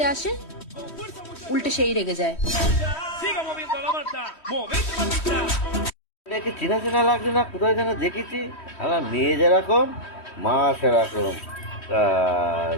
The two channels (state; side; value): late; right; 3.1 ms